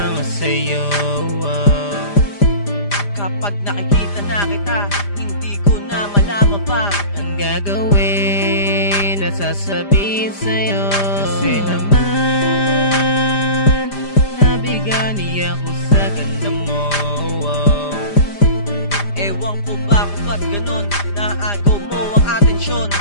sa'yo. Kapag nakikita na kita, hindi ko na malaman pa ang gagawin at sasabihin sa'yo. Kasi naman nabigani ako sa ganda mo. Ewan ko ba kung ba't ganon, naagaw mo ang atensyon.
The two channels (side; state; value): right; late; 5.0 ms